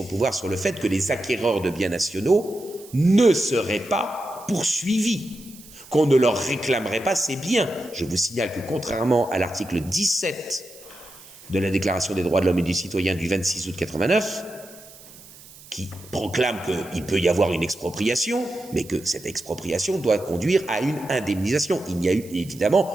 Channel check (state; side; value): noise; right; hiss, 20 dB below the sound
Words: pouvoir sur le fait que les acquéreurs de biens nationaux ne seraient pas poursuivis, qu'on ne leur réclamerait pas ces biens. Je vous signale que contrairement à l'article 17 de la Déclaration des droits de l'homme et du citoyen du 26 août 89, qui proclame qu'il peut y avoir une expropriation, mais que cette expropriation doit conduire à une indemnisation. Il n'y a eu